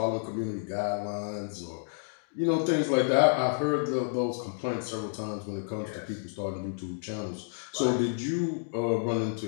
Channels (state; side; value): silent; right; digital silence